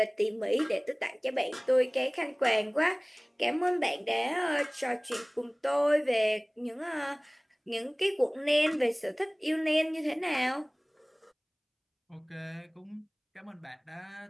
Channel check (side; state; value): both; identical; correlation 1.00